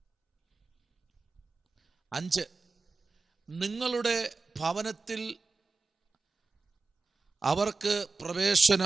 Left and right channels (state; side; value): quieter; left; 4.0 dB